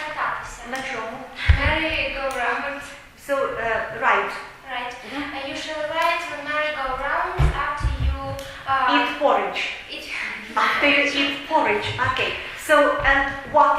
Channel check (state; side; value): identical; both; correlation 1.00